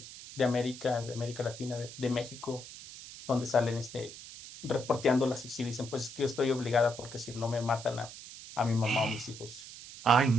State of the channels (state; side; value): noise; right; hiss, 14 dB below the sound